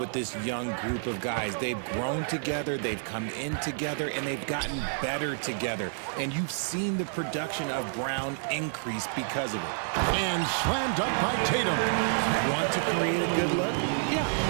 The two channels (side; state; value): left; silent; digital silence